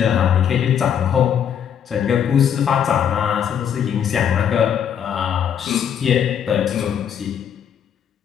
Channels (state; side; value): quieter; right; 8.6 dB